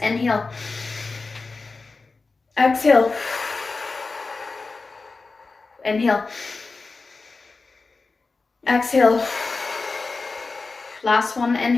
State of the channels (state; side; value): quieter; right; 4.0 dB